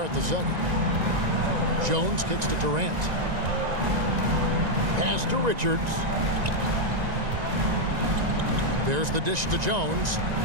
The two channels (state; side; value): late; left; 1.9 ms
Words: the second. Jones kicks to Durant. Pass to Richards. There's the dish to Jones.